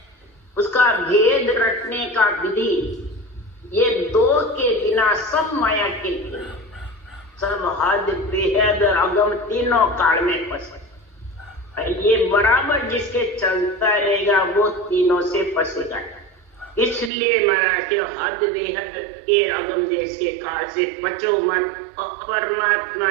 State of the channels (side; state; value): left; drops out; at 17.1 s